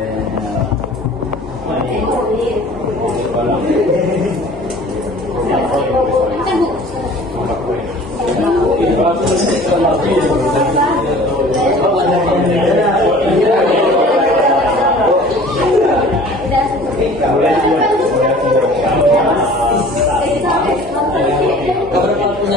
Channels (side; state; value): both; normal; correlation 0.46